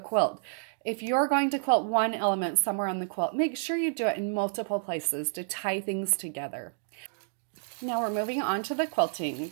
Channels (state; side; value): silent; left; digital silence